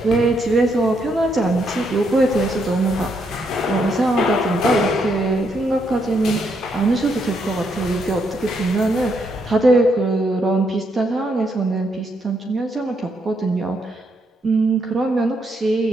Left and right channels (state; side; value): normal; both; correlation 0.76